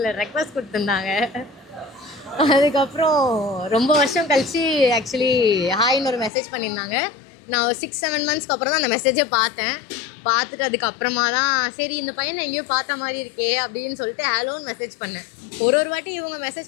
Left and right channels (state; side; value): drops out; right; at 6.3 s